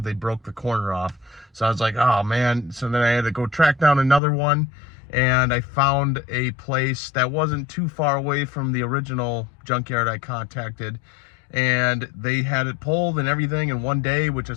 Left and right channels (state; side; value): drops out; right; at 4.2 s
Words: they broke the corner off. So I was like, oh man. So then I had to go track down another one, and I found a place that wasn't too far away from the original junkyard I contacted, and they had it pulled and everything in one day, which